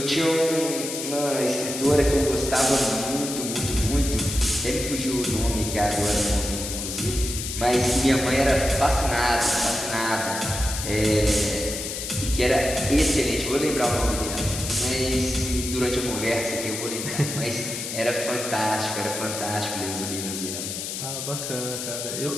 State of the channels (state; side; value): noise; left; hiss, 5 dB below the sound